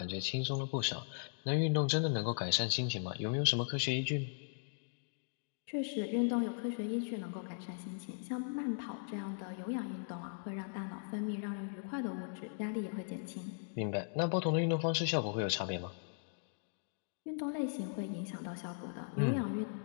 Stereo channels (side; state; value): right; silent; digital silence